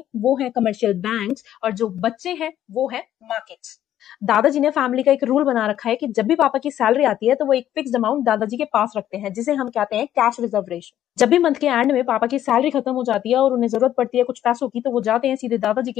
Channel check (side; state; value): right; quieter; 11.6 dB